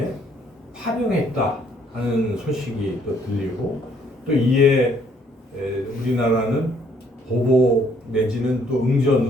파병했다 하는 소식이 또 들리고 또 이에 우리나라는 보복 내지는 또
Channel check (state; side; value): normal; both; correlation 0.65